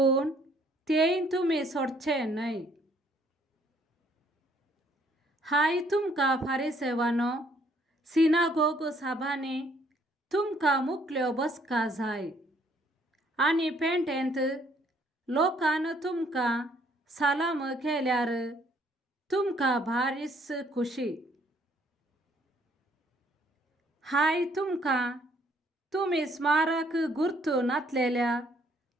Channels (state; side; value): normal; both; correlation 0.65